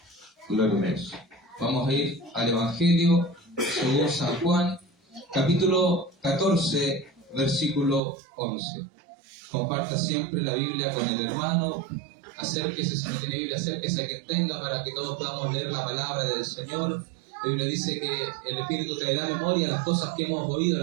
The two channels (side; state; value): left; drops out; at 8.0 s